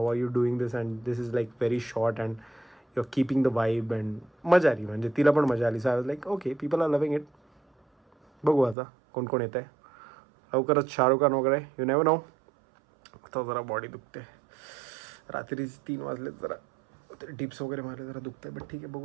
are you doing this and this is like very short and you are keeping the vibe. And मजा आली, म्हणजे तिला पण मजा आली. So I was like okay, people are loving it. बघू आता कोण कोण येत आहे. लवकरच शाहरुख खान वगैरे, यू नेव्हर नो. आता जरा बॉडी दुखते. रात्री 3 वाजले, जरा टिप्स वगैरह मारे, ज़रा दुखता है. बट ठीक है,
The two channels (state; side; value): drops out; left; at 8.8 s